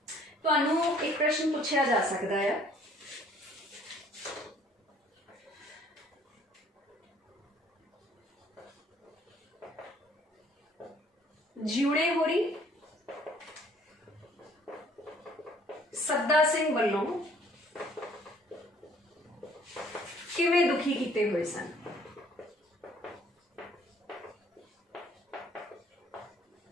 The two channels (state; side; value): normal; both; correlation 0.59